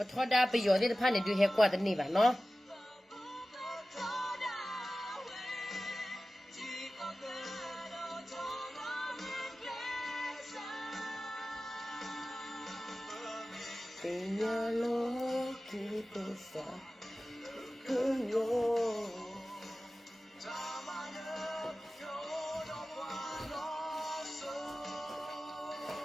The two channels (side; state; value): both; normal; correlation 0.96